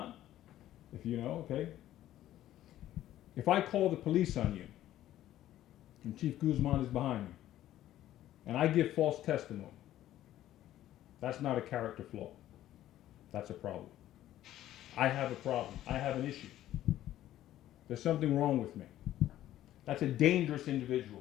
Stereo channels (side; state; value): right; quieter; 13.2 dB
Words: If you know, okay. If I call the police on you, and Chief Guzman is behind me, and I give false testimony, that's not a character flaw. That's a problem. I have a problem. I have an issue. There's something wrong with me. That's a dangerous